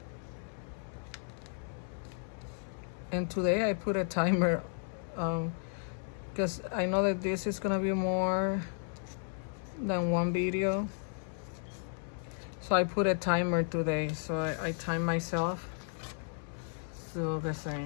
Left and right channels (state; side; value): silent; right; 55 dB below the other